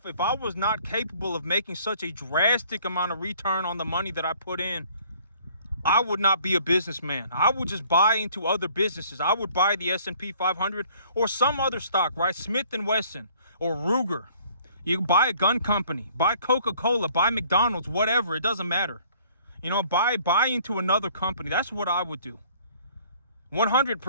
I was not capable of making such a drastic amount of return on the money that I put in, I would not be a businessman. I would just buy into other businesses. I would buy the S&P 500 or some other stock, right? Smith & Wesson or Ruger. You can buy a gun company, buy Coca-Cola, buy McDonald's, whatever. It doesn't matter. Buy into another company. That's what I would do.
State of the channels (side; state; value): both; inverted; correlation -0.57